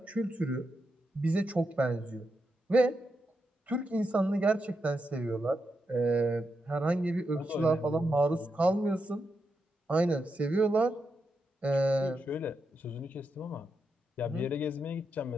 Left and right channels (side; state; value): both; normal; correlation 0.85